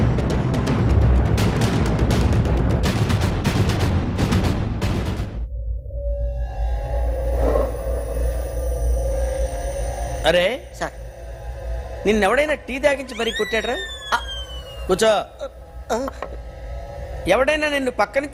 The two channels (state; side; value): identical; both; correlation 1.00